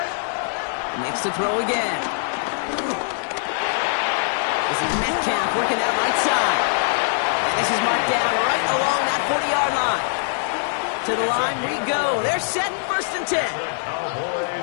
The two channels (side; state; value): right; silent; 64 dB below the other